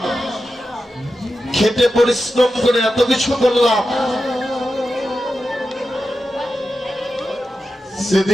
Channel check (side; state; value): both; normal; correlation 0.91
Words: খেটে পরিশ্রম করে এত কিছু করলাম,